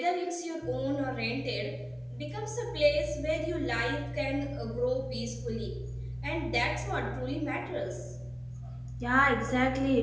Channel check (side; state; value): both; identical; correlation 1.00